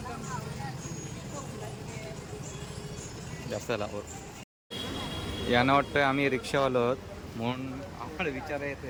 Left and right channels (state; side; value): identical; both; correlation 1.00